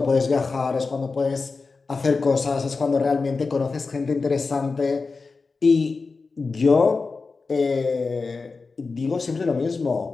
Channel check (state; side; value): quieter; right; 4.2 dB